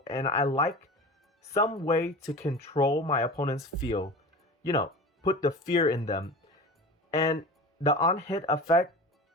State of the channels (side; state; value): both; normal; correlation 0.33